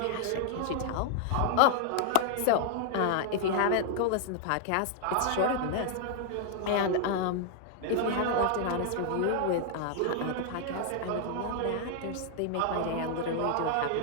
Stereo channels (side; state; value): both; different; correlation 0.00